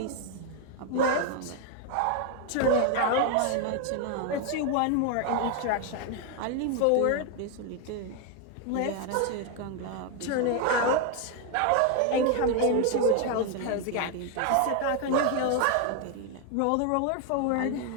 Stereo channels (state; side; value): different; both; correlation 0.01